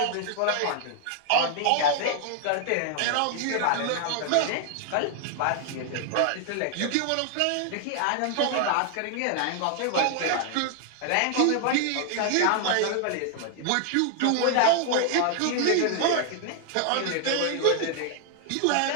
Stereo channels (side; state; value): both; different; correlation 0.00